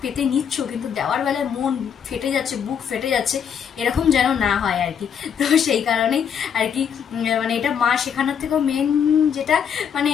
পেতে নিচ্ছ কিন্তু দেওয়ার বেলায় মন ফেটে যাচ্ছে, বুক ফেটে যাচ্ছে, এরকম যেন না হয় আর কি। তো সেই কারণেই আর কি মানে এটা মা শেখানোর থেকেও মেন যেটা মানে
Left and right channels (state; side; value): quieter; right; 7.8 dB